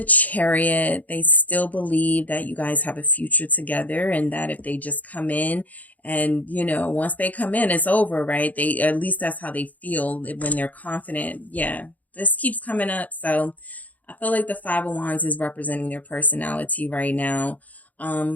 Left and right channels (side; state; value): right; late; 0.077 ms